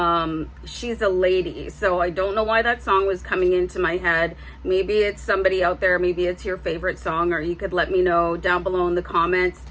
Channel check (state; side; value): identical; both; correlation 1.00